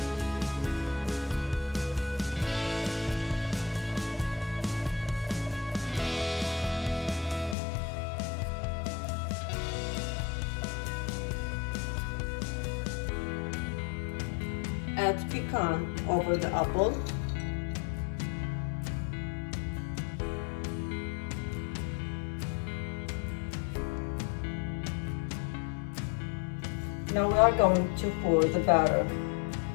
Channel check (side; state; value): right; drops out; at 7.6 s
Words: Add pecan over the apple. Now we are going to pour the batter